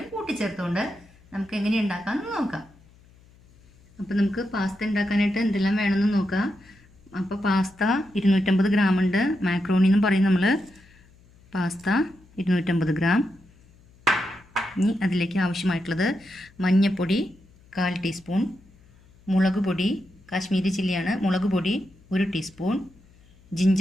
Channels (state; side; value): noise; left; hum, 28 dB below the sound